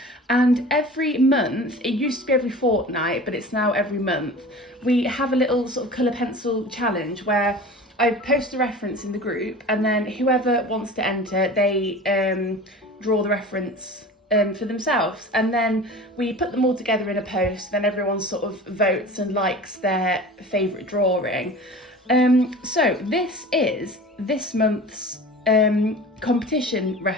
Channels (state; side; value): normal; both; correlation 0.38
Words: And every month, it used to be every fortnight, but it's now every month, we have a little sort of colour pencil challenge where I post a reference in the group, and then whoever wants to enter, they draw the reference for themselves, and then we put them all together in a post. Then everyone sort of votes and likes their favourite drawing. So this is this month's competition